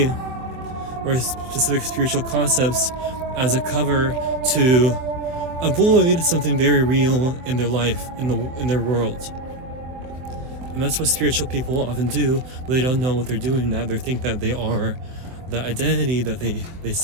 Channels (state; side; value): late; left; 23 ms